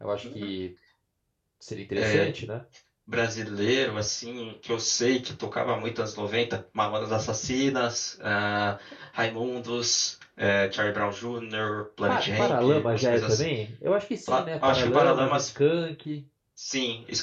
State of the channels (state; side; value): identical; both; correlation 1.00